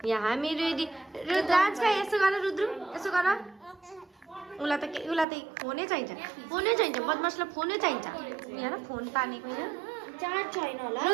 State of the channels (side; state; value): left; drops out; at 5.2 s